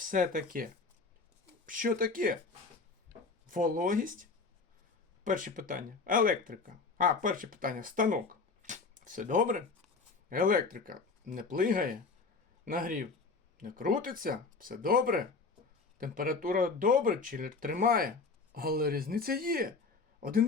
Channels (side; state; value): right; quieter; 4.3 dB